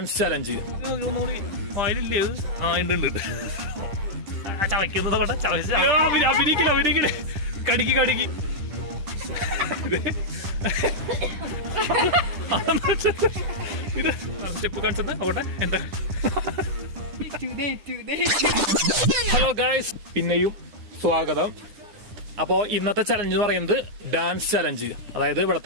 challenge. ഒന്നുകൂടി ഫയലില്ലേ? ആ ഉണ്ട്. ചവയ്ക്കുന്നതോട്ടെ അഭിനയിക്കില്ല കടിക്ക് ഇത് സ്റ്റെപ്പ് കാണിച്ചത് അവിടെ എന്താ. ഹലോ ഗൈസ്, പിന്നെയും സ്വാഗതം. അപ്പോൾ ഇന്നത്തെ ചലഞ്ച് എന്ന് പറയുന്നത് ഡാൻസ് ചലഞ്ച്. അതായത്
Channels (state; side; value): late; left; 10 ms